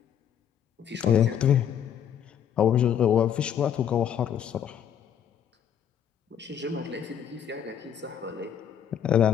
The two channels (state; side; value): quieter; right; 9.0 dB